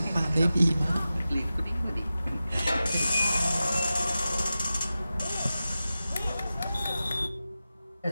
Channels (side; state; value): both; inverted; correlation -0.94